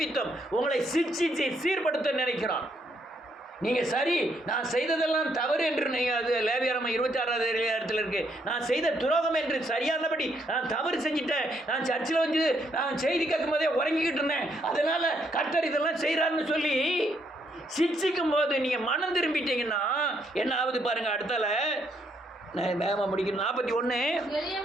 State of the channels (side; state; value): both; normal; correlation 0.73